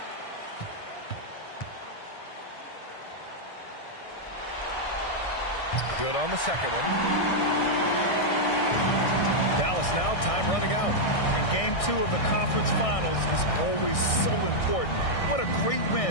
Good on the second one. Dallas now, time running out. And game 2 of the conference finals is always so important. What a great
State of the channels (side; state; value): right; late; 1.6 ms